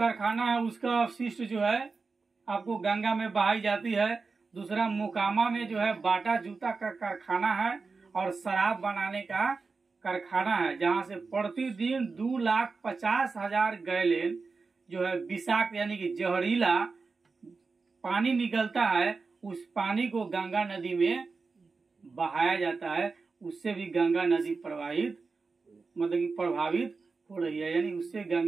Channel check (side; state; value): left; quieter; 4.4 dB